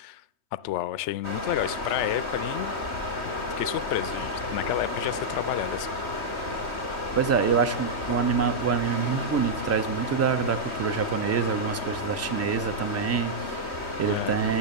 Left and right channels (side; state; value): right; late; 3.2 ms